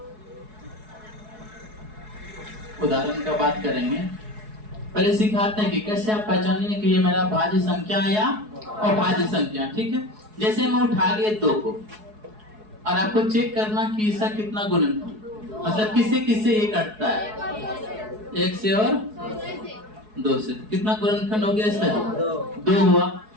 उदाहरण का बात करेंगे, पहले सिखाते हैं कि कैसे आप पहचानिए कि ये मेरा भाज्य संख्या है या अभाज्य संख्या। ठीक है, जैसे मैं उठा लिए 2 को, और आपको चेक करना कि इसका कितना गुणनफल, मतलब किससे किससे ये कटता है, 1 से और 2 से। कितना गुणनफल हो गया इसका? 2 हुआ।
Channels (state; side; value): late; left; 4.7 ms